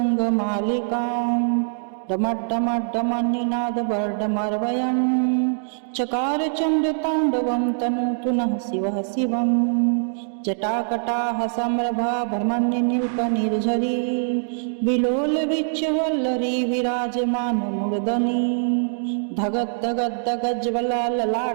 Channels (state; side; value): silent; left; digital silence